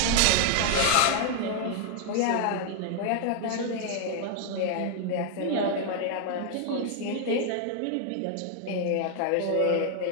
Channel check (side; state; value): both; different; correlation 0.00